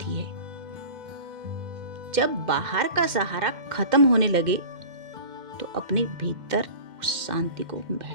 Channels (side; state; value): left; late; 2.1 ms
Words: है। जब बाहर का सहारा खत्म होने लगे तो अपने भीतर उस शांति को